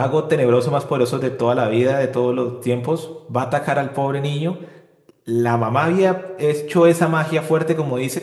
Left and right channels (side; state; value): both; identical; correlation 1.00